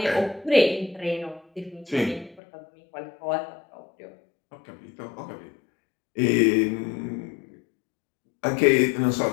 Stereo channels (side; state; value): right; drops out; at 2.4 s